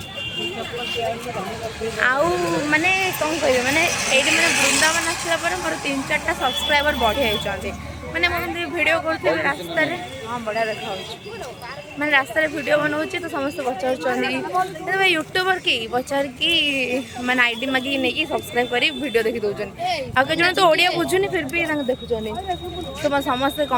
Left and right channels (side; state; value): both; identical; correlation 1.00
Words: आउ माने कौन कह माने ये मैंने वृंदावन आसला मोर 3-4टा सब्सक्राइबर बढ़ी जाती मैंने मुझे वीडियो करते रास्ता हाँ बढ़िया देखा मैंने रास्ता वीडियो बनाऊँ तो समस्त पचार यूट्यूबर की पचार कि मैंने आईडी मागिक नहीं सब्सक्राइब कर वीडियो देखी दौरान आगे जन तो ओडिया बुझुनी फिर भी देखुं तो मैं समस्ते